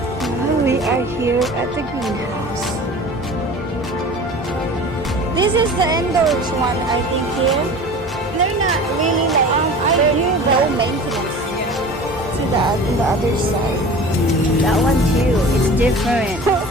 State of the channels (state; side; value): normal; both; correlation 0.39